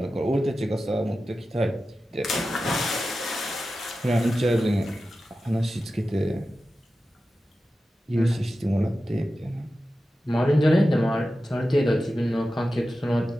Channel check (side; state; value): both; normal; correlation 0.93